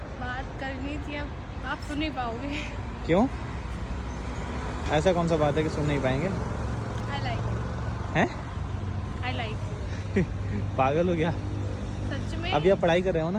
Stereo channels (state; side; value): identical; both; correlation 1.00